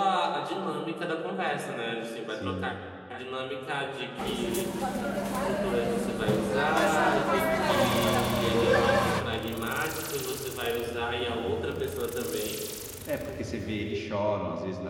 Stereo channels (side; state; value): both; identical; correlation 1.00